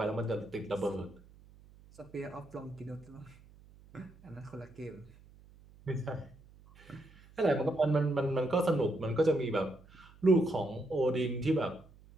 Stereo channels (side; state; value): right; noise; hum, 24 dB below the sound